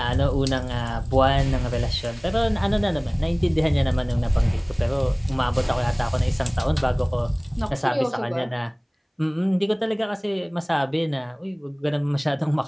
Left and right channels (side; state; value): both; identical; correlation 1.00